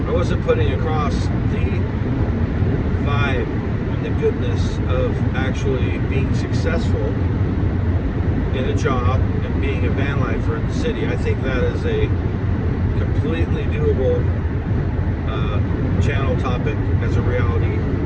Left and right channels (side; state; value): both; identical; correlation 1.00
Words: I wasn't putting across the vibe and the goodness of actually being successful in a job and being a van lifer in the city. I think that is a completely doable channel topic as a reality